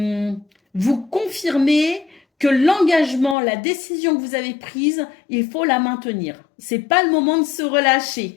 vous confirmer que l'engagement, la décision que vous avez prise, il faut la maintenir. C'est pas le moment de se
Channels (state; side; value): drops out; right; at 3.4 s